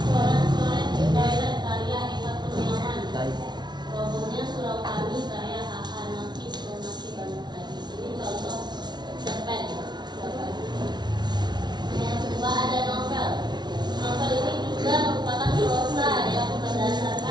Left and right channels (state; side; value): late; left; 0.20 ms